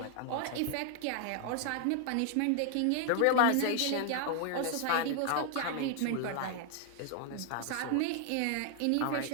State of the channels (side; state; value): both; different; correlation 0.00